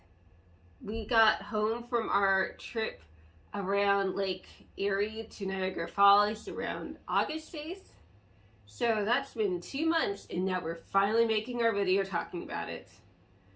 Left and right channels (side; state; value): both; identical; correlation 1.00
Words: We got home from our trip around Lake Erie to Niagara Falls around August 8th. So that's been 2 months, and now we're finally making our video talking about it.